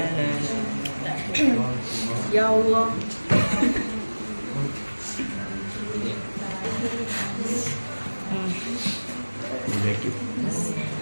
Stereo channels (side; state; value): both; inverted; correlation -1.00